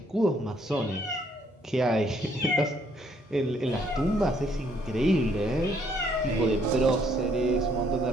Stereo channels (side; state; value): both; normal; correlation 0.67